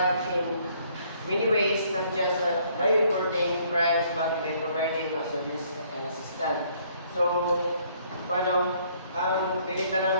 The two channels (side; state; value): both; inverted; correlation -0.64